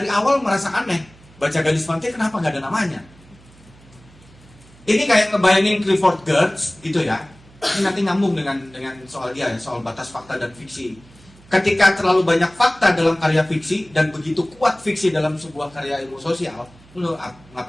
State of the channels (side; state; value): right; noise; hum, 25 dB below the sound